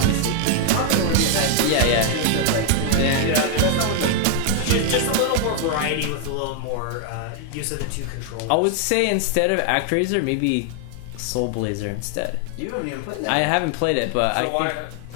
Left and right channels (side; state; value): both; different; correlation 0.00